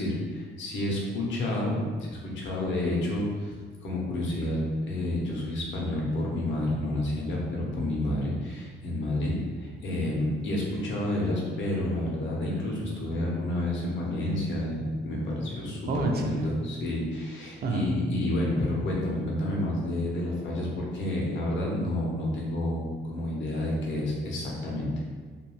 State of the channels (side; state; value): both; normal; correlation 0.64